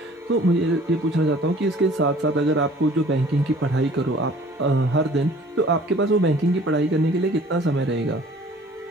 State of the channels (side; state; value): both; normal; correlation 0.51